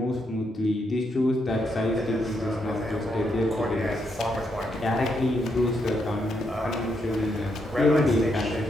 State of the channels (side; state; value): both; normal; correlation 0.79